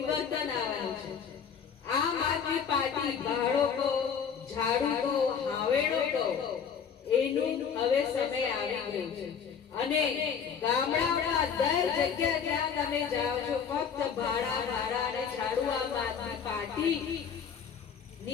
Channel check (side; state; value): right; quieter; 7.0 dB